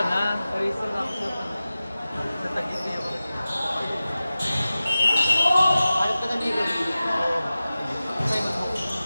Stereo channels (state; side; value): inverted; both; correlation -0.96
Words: na. Reason ako sa Taguig yung Ayop ka na dito.